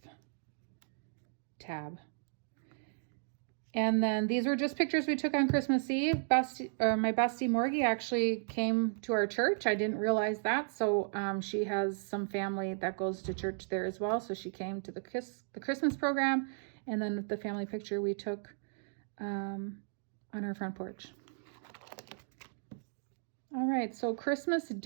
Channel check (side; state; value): left; silent; digital silence